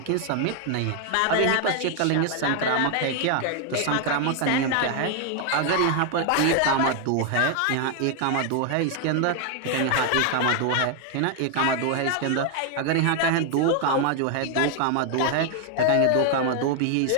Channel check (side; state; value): both; different; correlation 0.00